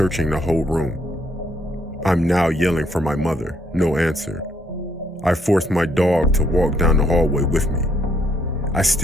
the whole room. I'm now yelling for my mother, no answer. I force my dog to walk down the hallway with me. I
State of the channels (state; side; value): normal; both; correlation 0.71